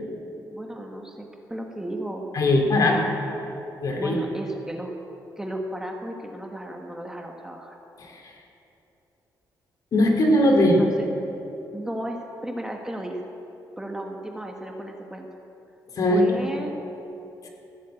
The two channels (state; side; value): normal; both; correlation 0.73